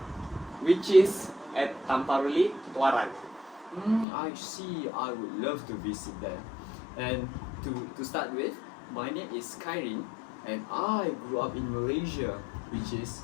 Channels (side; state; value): right; drops out; at 4.0 s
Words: which is at Tamparuli, Tuaran. I see. I would love to visit there. And to start with, my name is Kairin, and I grew up in Malaysia, which is,